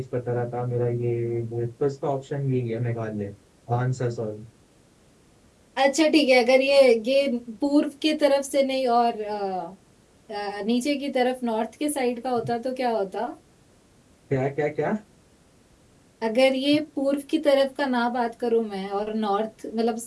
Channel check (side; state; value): both; identical; correlation 1.00